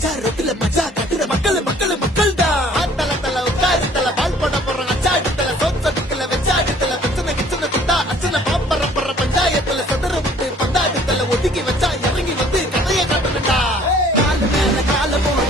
ரோட்ல மஜா கட்டுற மக்கள் மக்கள் மக்கள் தான் தல தல உட்காரு தல பால் போட போறோம் அச்சாடு தல சோச்சடுக்கல வச்சாடு தல பிரச்சனை கிச்சனை குட்டா அச்சனை பாப்பற போற பஞ்சாயத்துல சதுர விட்டு பந்தாடு தல ஒதுக்கி வச்சா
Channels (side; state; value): both; normal; correlation 0.55